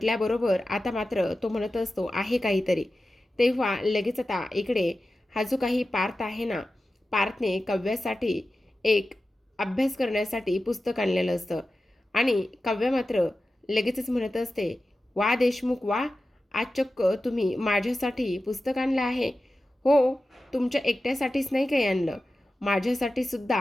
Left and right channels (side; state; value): both; normal; correlation 0.94